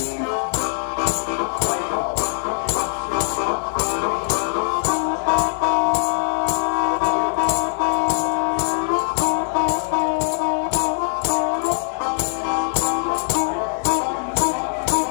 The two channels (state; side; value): silent; right; digital silence